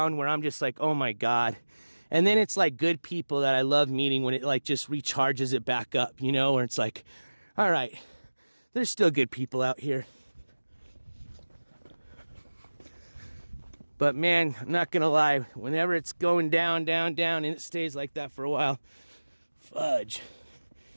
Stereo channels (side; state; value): both; inverted; correlation -1.00